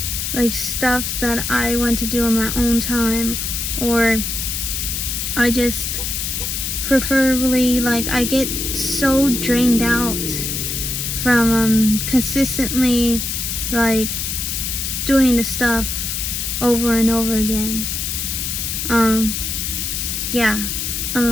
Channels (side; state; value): left; noise; hiss, 2 dB below the sound